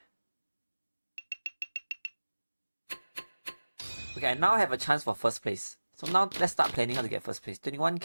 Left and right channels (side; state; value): both; inverted; correlation -1.00